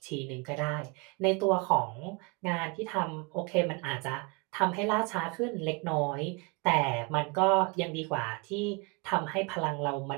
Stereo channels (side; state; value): left; quieter; 30.1 dB